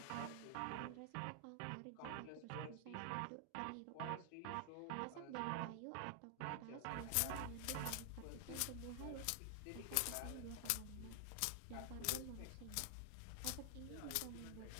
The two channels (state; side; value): different; both; correlation 0.00